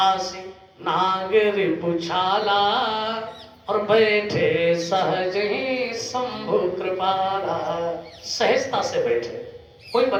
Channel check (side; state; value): both; identical; correlation 1.00